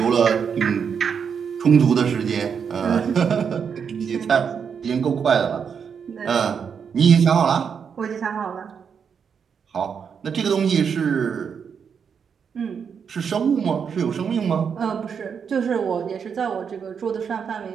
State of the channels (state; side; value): quieter; left; 6.8 dB